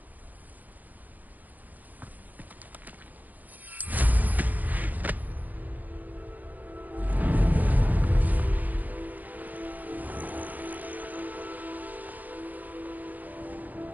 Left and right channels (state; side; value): late; left; 0.083 ms